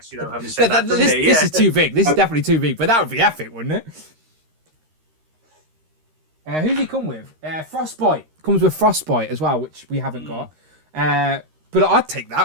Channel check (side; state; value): left; late; 13 ms